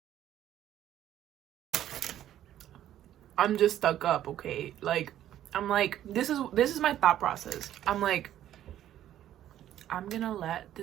I'm just stuck up, okay? Like, I'm like, this is my thought process. I'm like, I'm gonna let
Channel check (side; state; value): left; quieter; 11.9 dB